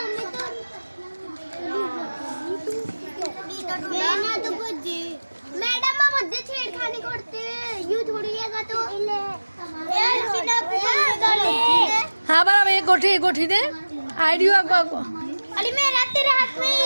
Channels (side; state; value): both; inverted; correlation -1.00